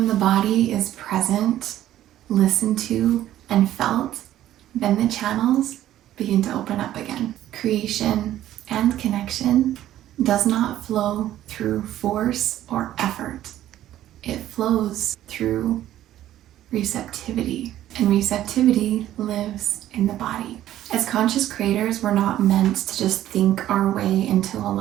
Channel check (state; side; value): quieter; left; 13.0 dB